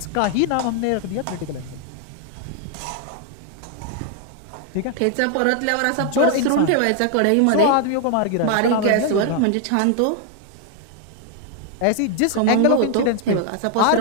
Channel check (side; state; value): both; different; correlation 0.00